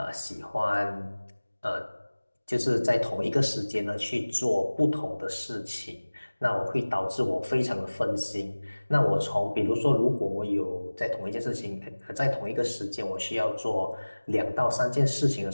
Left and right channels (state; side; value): inverted; both; correlation -1.00